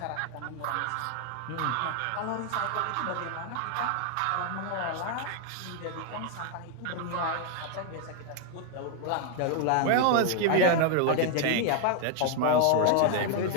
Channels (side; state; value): both; different; correlation 0.00